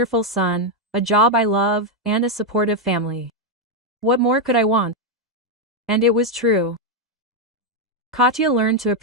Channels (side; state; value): both; normal; correlation 0.02